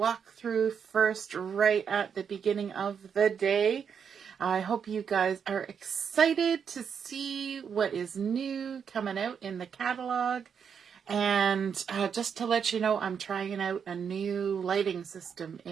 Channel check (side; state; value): left; quieter; 7.1 dB